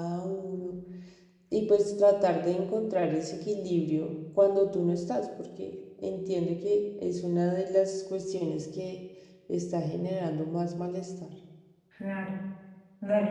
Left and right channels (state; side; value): identical; both; correlation 1.00